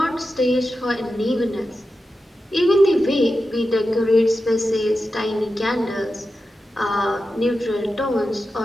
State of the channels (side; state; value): both; normal; correlation 0.91